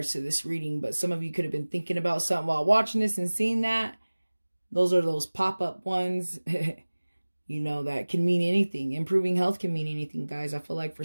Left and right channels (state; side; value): inverted; both; correlation -1.00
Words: to this reading. But some of you could have been thinking about something while watching this and seeing that. Those are those pop-up ones. You know, that can mean anything. Improving health can mean anything, guys. I feel like for